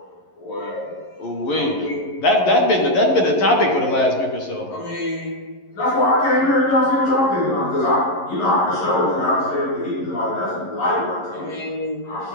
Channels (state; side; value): late; right; 11 ms